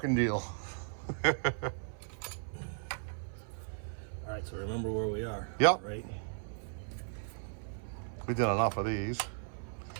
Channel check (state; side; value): silent; left; 54 dB below the other